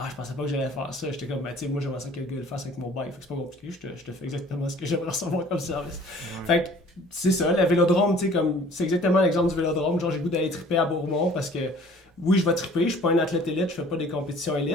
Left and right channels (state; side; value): normal; both; correlation 0.52